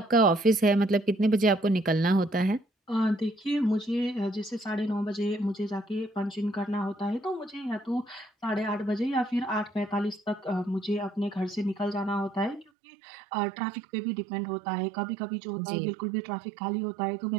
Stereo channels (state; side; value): drops out; left; at 12.7 s